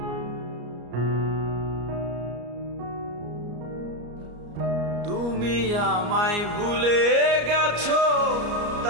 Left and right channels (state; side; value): late; left; 34 ms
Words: তুমি আমায় ভুলে গেছো